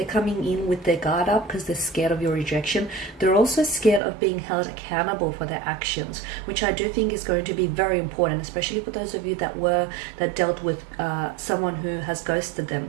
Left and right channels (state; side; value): drops out; left; at 4.0 s